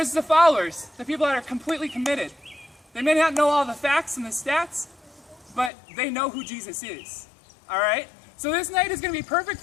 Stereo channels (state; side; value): drops out; right; at 5.7 s